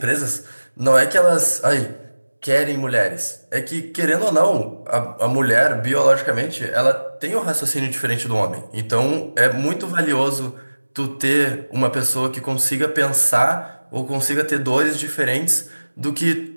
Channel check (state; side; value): inverted; both; correlation -1.00